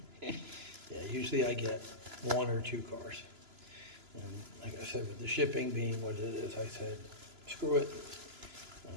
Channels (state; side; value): late; left; 2.9 ms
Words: usually I get 1 or 2 cars. And like I said, with the shipping being what it is, I said, screw it.